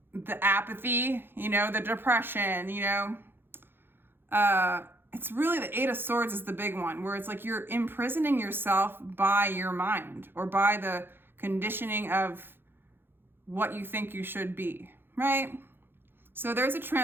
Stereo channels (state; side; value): late; left; 0.10 ms